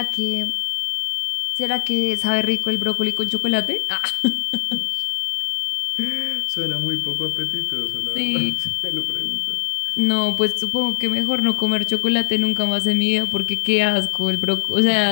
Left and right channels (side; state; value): right; silent; 65 dB below the other